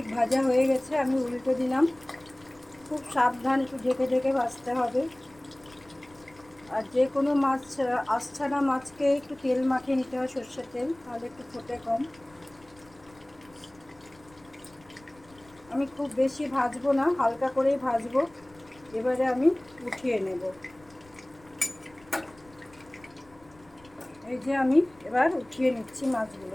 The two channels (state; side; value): noise; left; rumble, 27 dB below the sound